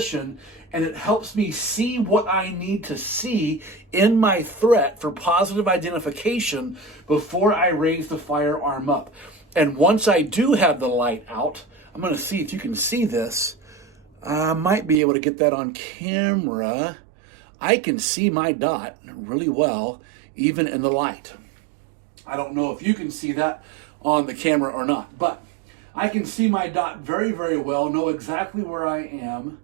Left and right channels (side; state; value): left; drops out; at 15.0 s